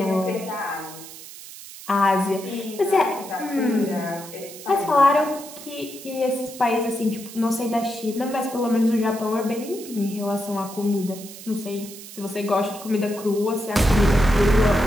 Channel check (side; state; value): right; noise; hiss, 15 dB below the sound